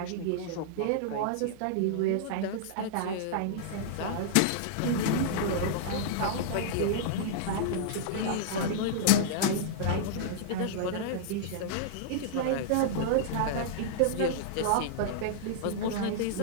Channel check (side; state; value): both; different; correlation -0.01